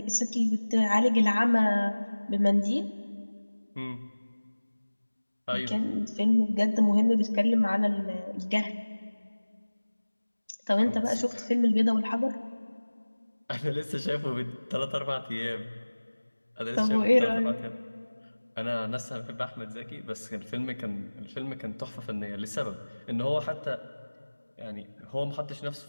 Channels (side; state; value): both; inverted; correlation -1.00